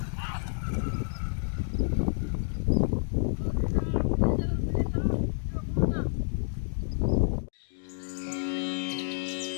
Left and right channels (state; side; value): silent; right; digital silence